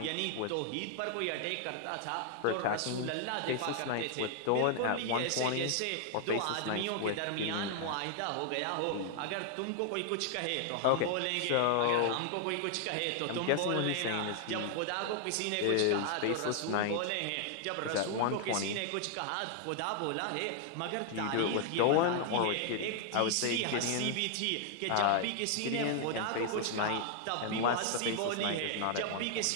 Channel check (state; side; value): different; both; correlation 0.00